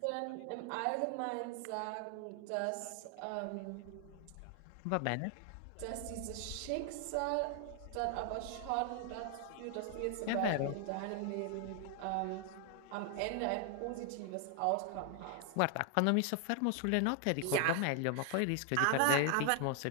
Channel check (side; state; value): both; different; correlation 0.00